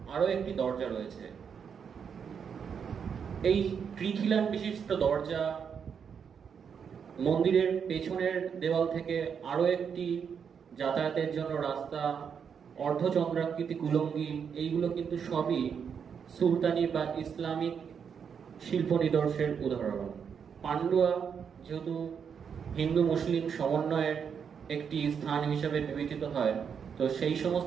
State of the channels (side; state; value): left; quieter; 7.0 dB